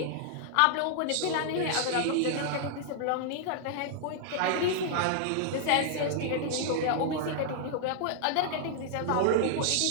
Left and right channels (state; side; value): different; both; correlation -0.01